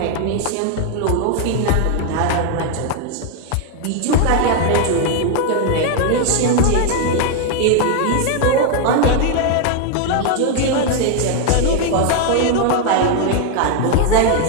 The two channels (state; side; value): different; both; correlation 0.01